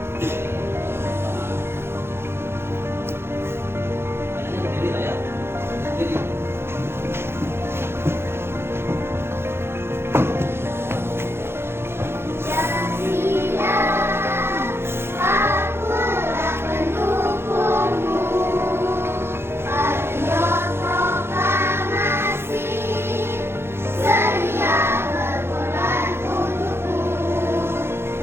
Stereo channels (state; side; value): late; left; 0.12 ms